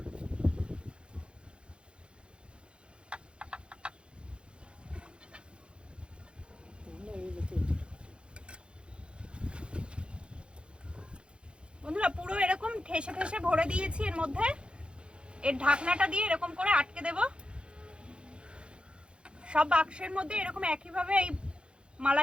বন্ধুরা পুরো এরকম ঠেসে ঠেসে ভরে দিয়েছি এর মধ্যে। এর ঢাকনাটা দিয়ে এরকম করে আটকে দেব। সব বাক্সের মধ্যে এরকম একইভাবে এই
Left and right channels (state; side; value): late; left; 0.056 ms